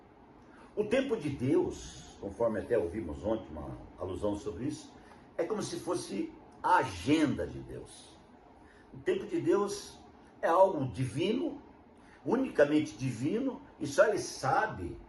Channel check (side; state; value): both; identical; correlation 1.00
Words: O tempo de Deus, conforme até ouvimos ontem uma alusão sobre isso, é como se fosse a agenda de Deus. O tempo de Deus é algo divino, unicamente divino, e só Ele sabe